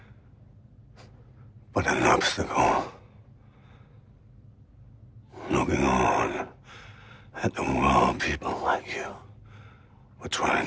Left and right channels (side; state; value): both; identical; correlation 1.00